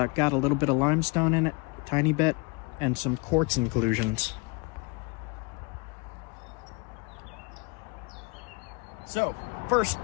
a little bit of limestone in it, a tiny bit, and some quartz inclusions. So, first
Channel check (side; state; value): right; quieter; 29.2 dB